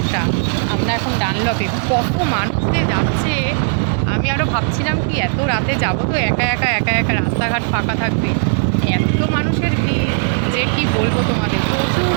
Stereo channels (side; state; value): left; silent; digital silence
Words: আমরা এখন ডানলপে, কত মানুষ যে যাচ্ছে। আমি আরও ভাবছিলাম কি এত রাতে যাবো তো একা একা রাস্তাঘাট ফাঁকা থাকবে, এত মানুষের ভিড় যে কি বলবো তোমাদের। প্রচুর